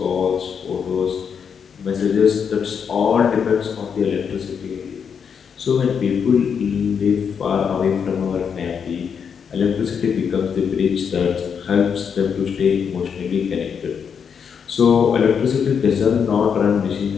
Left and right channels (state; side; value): quieter; right; 6.9 dB